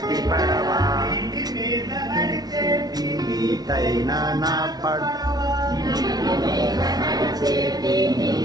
పడవ. నీటి మీద నడిచేటి నీటైన నా పడవ.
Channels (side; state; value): left; late; 0.19 ms